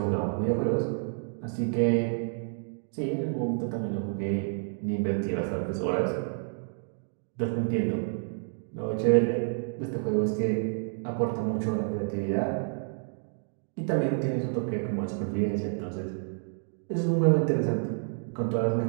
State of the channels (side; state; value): left; silent; 58 dB below the other